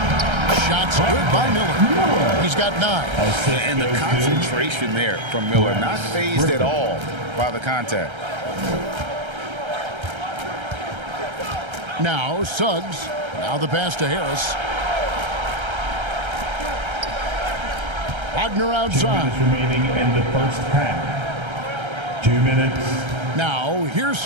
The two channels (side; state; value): left; late; 1.3 ms